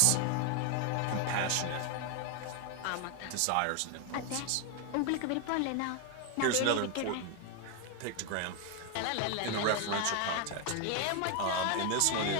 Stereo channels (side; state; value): both; different; correlation 0.01